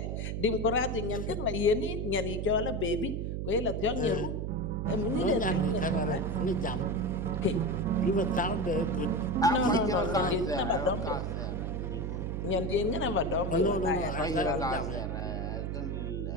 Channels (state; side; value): noise; right; hum, 2 dB below the sound